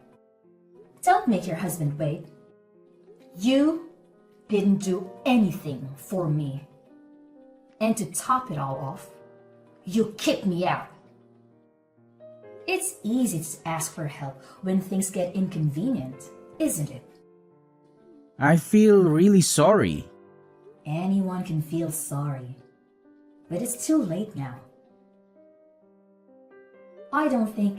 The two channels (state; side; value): identical; both; correlation 1.00